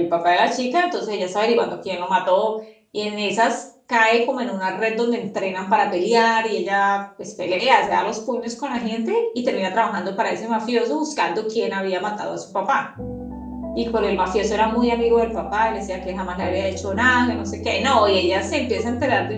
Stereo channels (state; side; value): identical; both; correlation 1.00